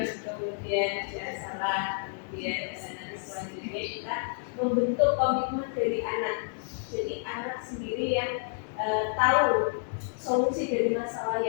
kemudian ada salah, kemudian nanti selanjutnya kita membentuk komitmen dari anak. Jadi anak sendiri yang tahu solusi dari masalah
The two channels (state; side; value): silent; right; digital silence